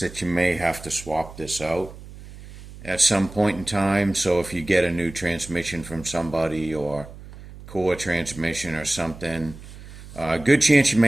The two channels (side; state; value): right; noise; hum, 16 dB below the sound